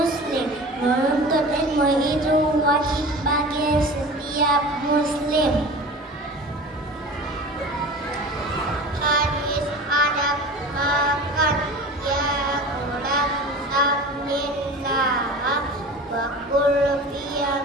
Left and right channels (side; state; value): both; normal; correlation 0.36